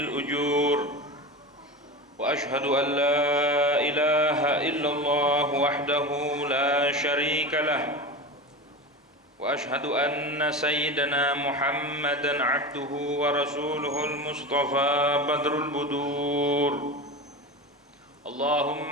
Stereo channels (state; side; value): normal; both; correlation 0.26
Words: وأشهد أن لا إله إلا الله وحده لا شريك له وأشهد أن سيدنا محمدًا عبده ورسوله المصطفى بدر البدور